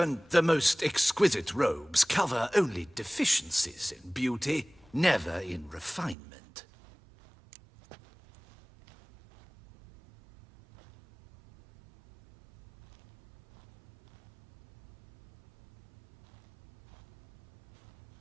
the most exquisite robes cover only deficiencies in beauty, never in refinement.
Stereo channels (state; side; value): drops out; left; at 6.2 s